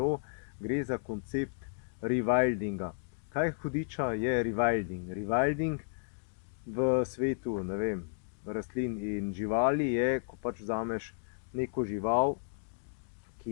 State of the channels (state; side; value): silent; right; digital silence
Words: Gre za koncept rewildinga. Kaj hudiča je rewilding? Rewilding v svetu, ne vem, rastlin in živali je, ko pač vzameš neko žival,